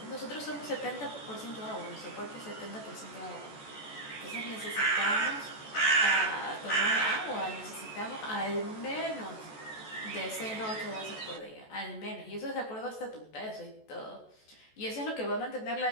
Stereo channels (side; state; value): right; late; 14 ms